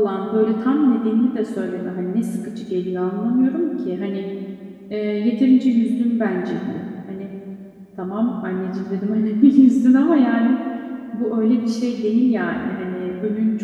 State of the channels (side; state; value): both; identical; correlation 1.00